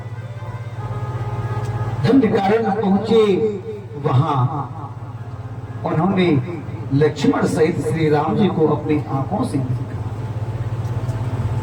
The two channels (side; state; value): both; identical; correlation 1.00